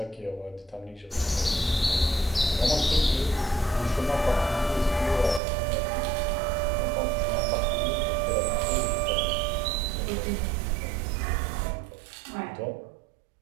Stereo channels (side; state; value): left; drops out; at 5.4 s